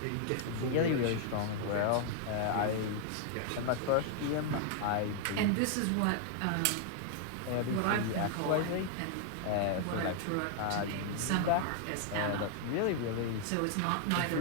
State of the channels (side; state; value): both; different; correlation 0.00